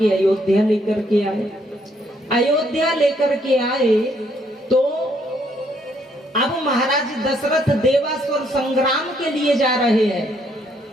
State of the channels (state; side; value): normal; both; correlation 0.70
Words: अयोध्या लेकर के आए। अयोध्या लेकर के आए तो अब महाराज दशरथ देवासुर संग्राम के लिए जा रहे हैं।